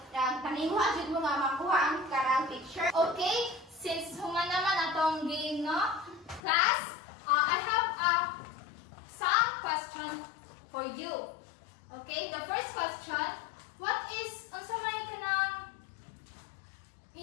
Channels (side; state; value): right; drops out; at 6.4 s